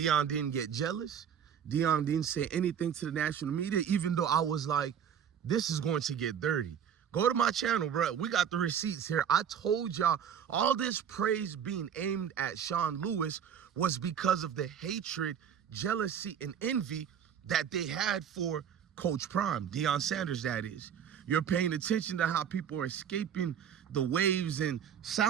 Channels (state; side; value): quieter; left; 8.4 dB